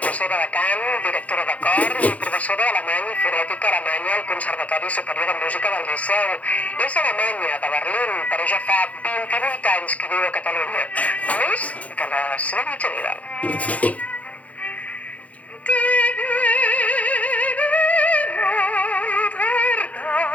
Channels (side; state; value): right; late; 0.068 ms